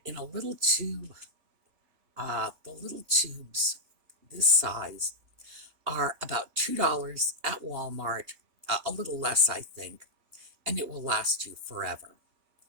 in a little tube. The little tubes, this size, are about $2 at Walmart, a little less, I think, and it will last you forever.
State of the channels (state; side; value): late; left; 2.8 ms